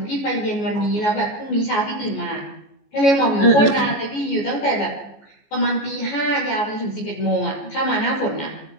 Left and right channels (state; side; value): late; right; 14 ms